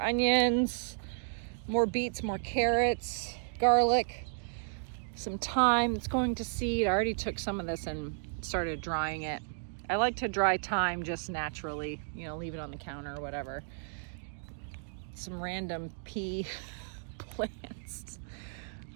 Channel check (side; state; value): left; silent; digital silence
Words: more beets, more carrots, garlic, some thyme. It's going to seed. I already took some of this and started drying it. I like to dry thyme just naturally, leave it on the counter or whatever. Some random pea plants.